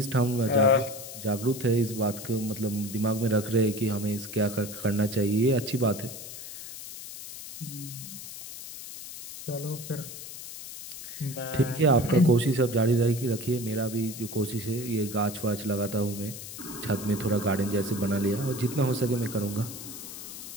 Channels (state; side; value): noise; left; hiss, 11 dB below the sound